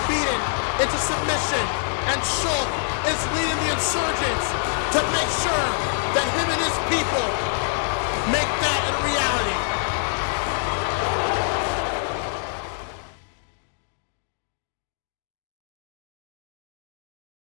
beaten into submission and Shulk is leading the insurgents to make sure that him and his people make that a reality.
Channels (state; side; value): silent; right; digital silence